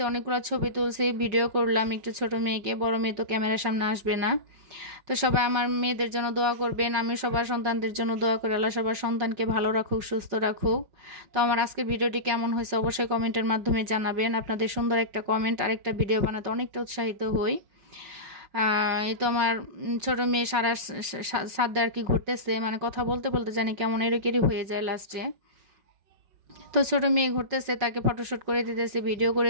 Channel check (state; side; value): late; left; 5.4 ms